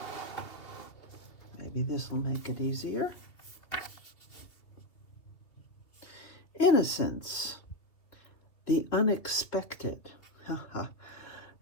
Maybe this will make it easier. Innocence. The unexpected.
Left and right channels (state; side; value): late; right; 2.8 ms